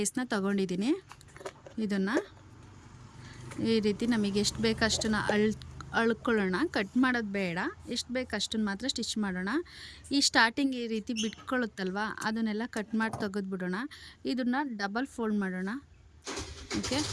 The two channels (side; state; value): both; identical; correlation 1.00